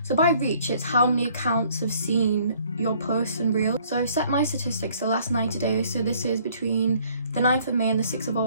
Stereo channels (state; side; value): inverted; both; correlation -0.60